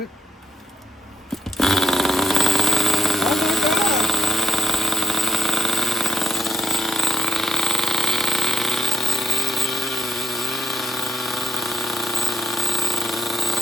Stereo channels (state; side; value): normal; both; correlation 0.82